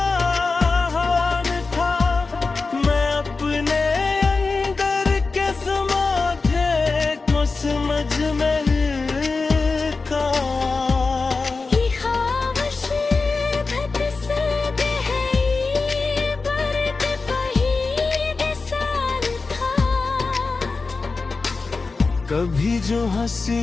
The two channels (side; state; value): right; quieter; 4.1 dB